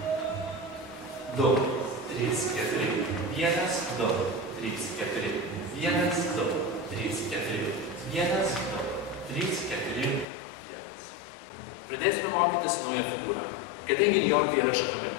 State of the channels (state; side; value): drops out; right; at 10.2 s